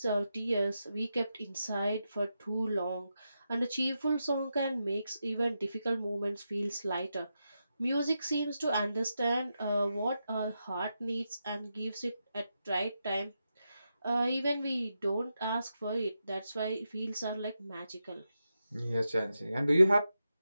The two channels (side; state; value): both; inverted; correlation -0.87